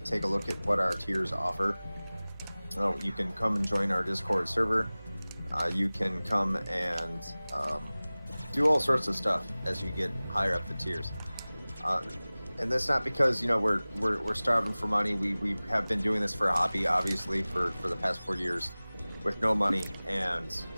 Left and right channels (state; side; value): inverted; both; correlation -0.99